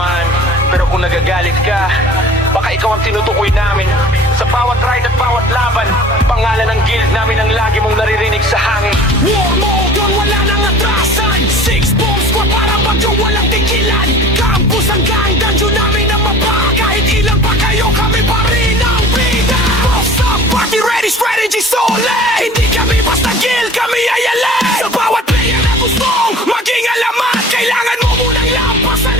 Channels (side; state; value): both; normal; correlation 0.44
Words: Pero kung nagagalit ka, baka ikaw ang tinutukoy namin. Sa bawat ride at bawat laban, pangalan ng guild namin ang lagi mong naririnig sa hangin. War mode yun, wala nang atrasan. 6-bomb squad parang bagyo walang tigilan. Campus hanggang dungeon namin ang mapa. Kahit ilan pa kayo, kami pa rin ang bida. Boss up, party ready, strategy solid. Hindi kami basta guild, kami ay alay. Sa bawat player na gustong maging alamat, kailangan mo munang lampasan